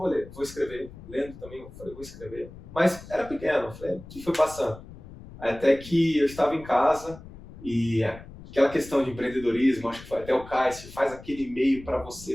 escrever. Lendo também, eu falei, vou escrever. Mas era pequeno, eu falei, o que foi passando? Até que eu estava em casa e aquela questão de empreendedorismo, acho que foi até o Cássio, faz aquele e-mail para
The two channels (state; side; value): noise; left; rumble, 17 dB below the sound